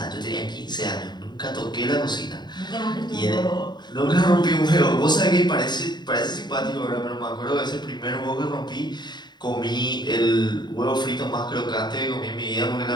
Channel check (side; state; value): right; late; 0.21 ms